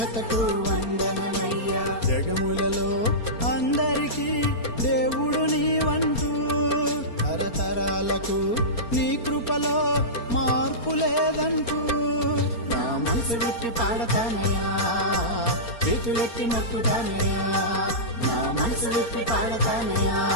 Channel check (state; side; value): late; right; 4.3 ms